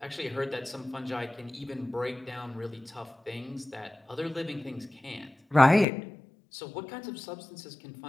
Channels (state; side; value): drops out; right; at 5.9 s